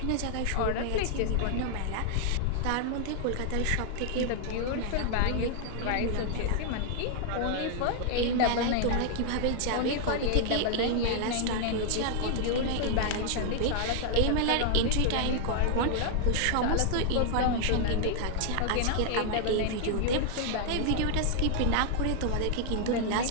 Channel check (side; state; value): both; different; correlation 0.00